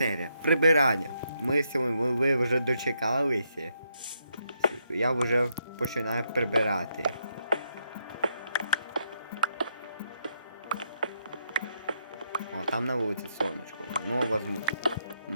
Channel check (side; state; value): both; inverted; correlation -0.79